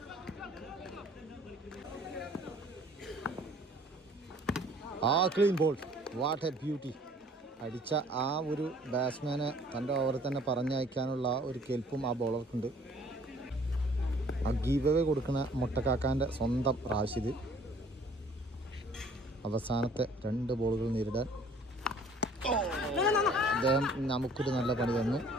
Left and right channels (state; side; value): normal; both; correlation 0.55